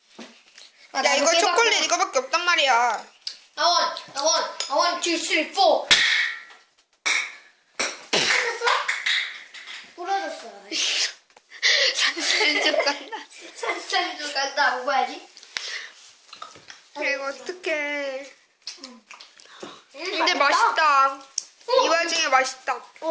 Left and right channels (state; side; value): identical; both; correlation 1.00